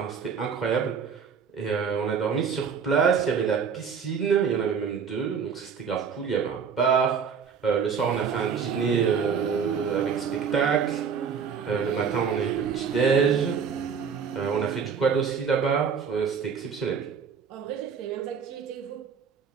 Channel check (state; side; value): quieter; left; 6.5 dB